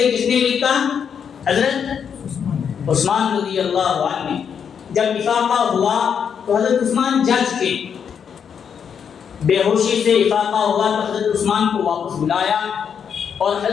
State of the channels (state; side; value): quieter; right; 7.4 dB